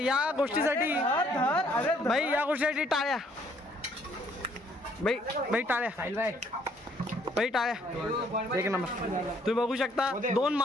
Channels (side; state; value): both; normal; correlation 0.65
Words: गोष्टीसाठी भाई या गोष्टीसाठी टाळ्या भाई टाळ्या भाई टाळ्या एक नंबर तुम्ही बघू शकता 2